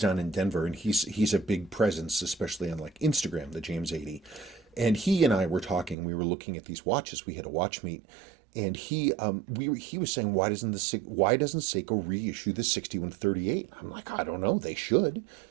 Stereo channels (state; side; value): drops out; left; at 6.0 s